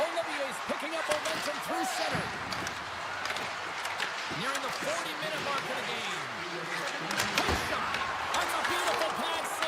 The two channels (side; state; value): both; identical; correlation 1.00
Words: Olivier's picking up momentum through center. Nearing the 40-minute mark of the game. His shot. That's a beautiful pass